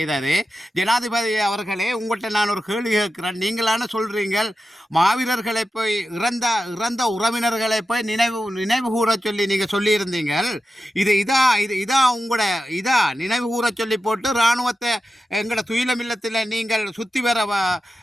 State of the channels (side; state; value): both; normal; correlation 0.91